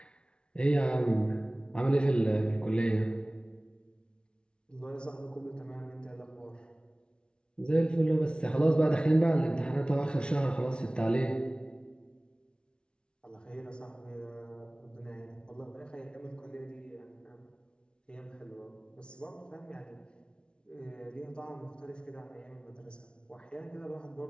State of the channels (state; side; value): late; right; 0.056 ms